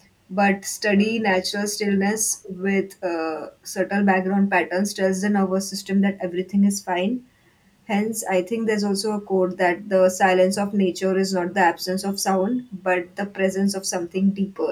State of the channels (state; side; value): identical; both; correlation 1.00